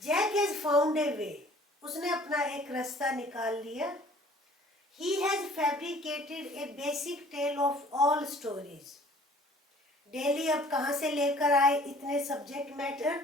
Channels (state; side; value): normal; both; correlation 0.52